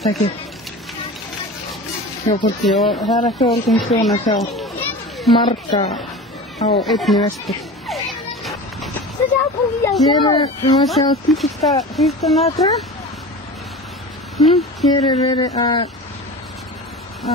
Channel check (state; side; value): normal; both; correlation 0.33